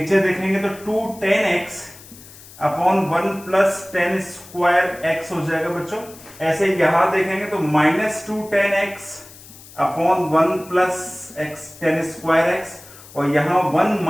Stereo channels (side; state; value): left; noise; hiss, 20 dB below the sound